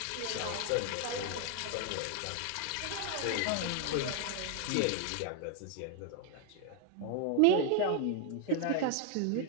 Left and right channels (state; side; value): different; both; correlation 0.00